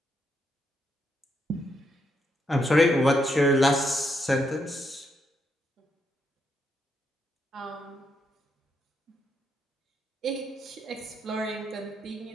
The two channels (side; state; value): both; normal; correlation 0.78